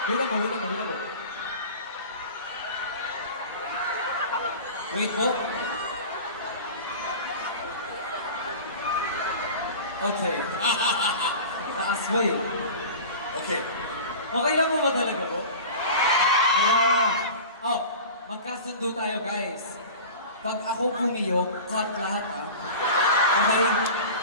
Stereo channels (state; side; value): inverted; both; correlation -0.35